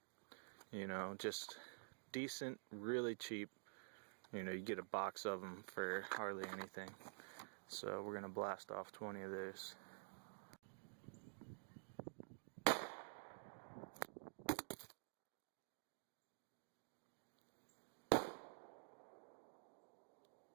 You know, just decent, really cheap. You know, you get a box of them for hardly anything. So we're going to blast off 20 of those.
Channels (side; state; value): left; silent; digital silence